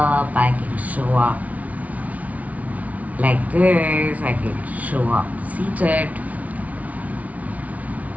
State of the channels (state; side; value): late; left; 0.070 ms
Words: I can show up like this, I can show up seated.